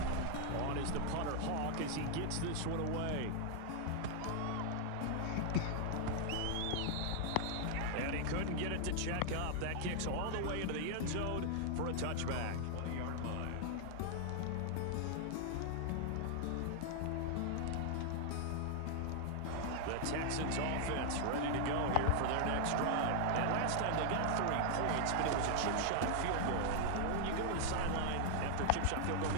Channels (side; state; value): both; different; correlation 0.00